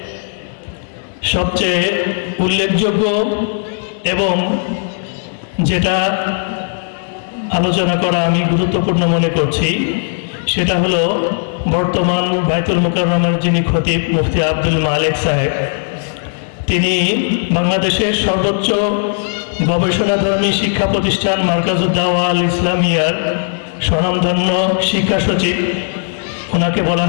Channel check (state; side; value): silent; right; digital silence